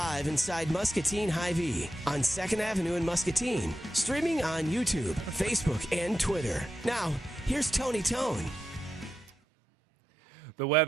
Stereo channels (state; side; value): normal; both; correlation 0.88